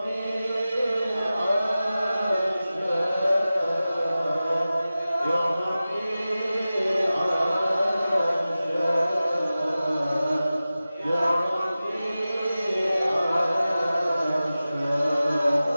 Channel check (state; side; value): inverted; both; correlation -0.95